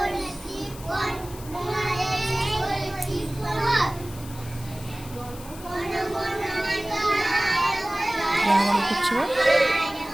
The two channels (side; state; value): left; noise; hiss, 17 dB below the sound